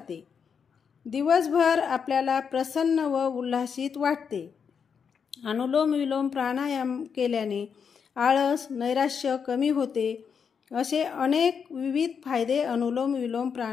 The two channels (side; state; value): right; quieter; 6.6 dB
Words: दिवसभर आपल्याला प्रसन्न व उल्हासित वाटते। अनुलोम विलोम प्राणायाम केल्याने आळस, नैराश्य कमी होते। असे अनेक विविध फायदे अनुलोम विलोम